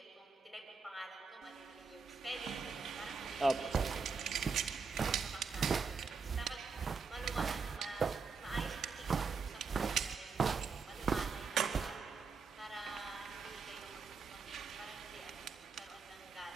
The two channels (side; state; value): left; quieter; 5.1 dB